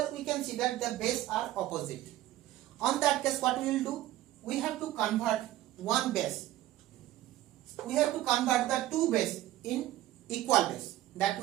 we can see that the base are opposite. On that case, what we will do? We have to convert one base. We have to convert the two base in equal base. That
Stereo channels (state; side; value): quieter; left; 14.6 dB